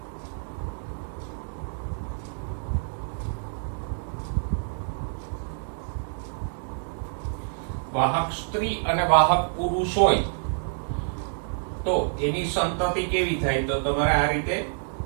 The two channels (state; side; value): silent; left; digital silence